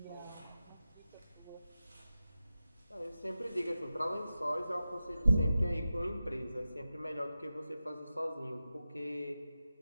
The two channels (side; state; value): both; inverted; correlation -0.93